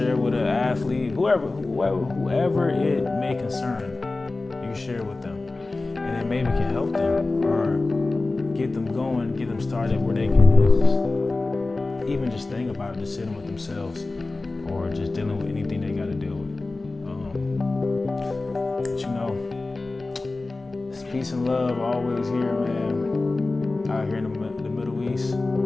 with an athlete, whoever it may concern. You can share with them, and then maybe can help them or get them going, get them started where they can even just think about it, just sitting with themselves, or just dealing with anything they got to deal with. It's peace and love always here, man. Out here in the Middle East,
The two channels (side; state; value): right; quieter; 3.3 dB